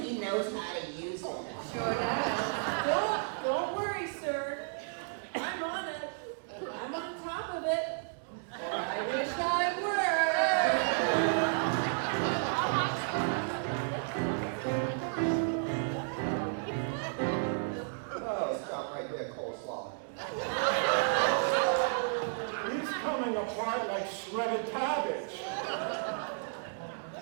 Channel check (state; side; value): silent; left; digital silence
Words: he knows how to use it. Sure does. Don't worry, sir. I'm on it. I'm on top of it. I wish I were. Oh, stop right there, coleslaw. He's coming apart like shredded cabbage.